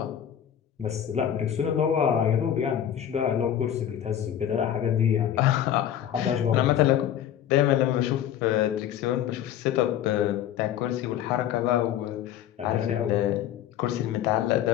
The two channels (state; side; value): quieter; right; 10.5 dB